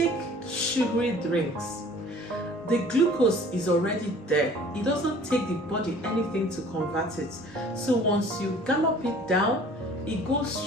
sugary drinks, the glucose is already there. It doesn't take the body anything to convert it. So once you gallop it down, it goes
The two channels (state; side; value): normal; both; correlation 0.50